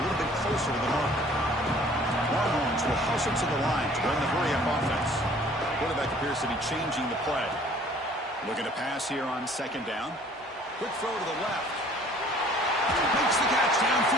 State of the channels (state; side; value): normal; both; correlation 0.54